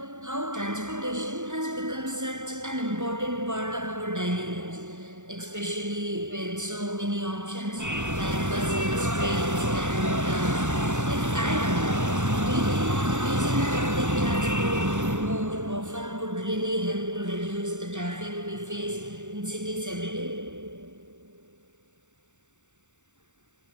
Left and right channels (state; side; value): late; left; 0.84 ms